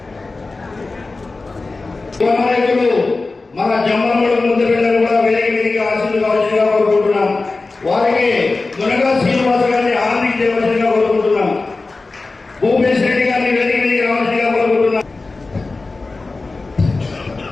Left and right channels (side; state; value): right; quieter; 3.6 dB